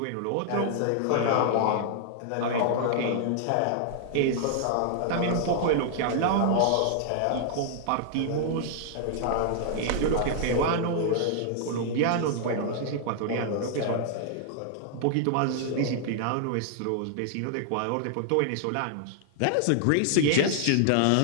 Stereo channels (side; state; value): both; different; correlation -0.01